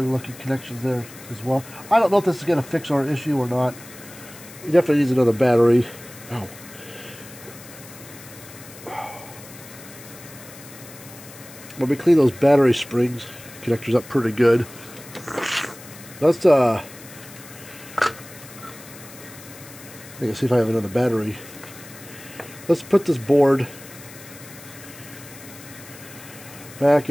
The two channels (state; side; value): noise; left; hiss, 18 dB below the sound